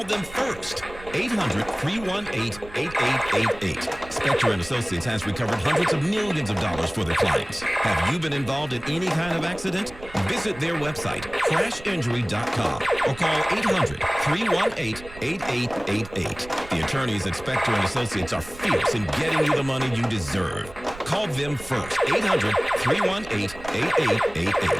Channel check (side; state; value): right; noise; rumble, 17 dB below the sound